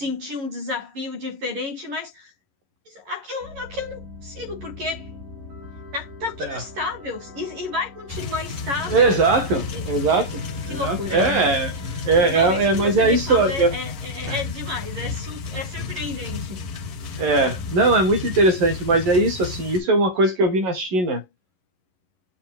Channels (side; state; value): left; late; 11 ms